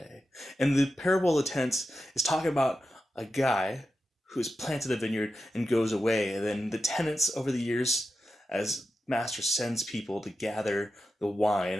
And the parable of the tenants is talking about a guy who has planted a vineyard and goes away. And then the tenants over the years, as master sends people to gather the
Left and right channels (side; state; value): both; normal; correlation 0.90